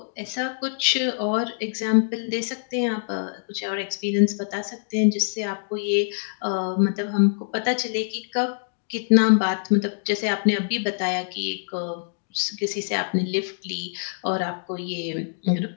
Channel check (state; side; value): silent; right; digital silence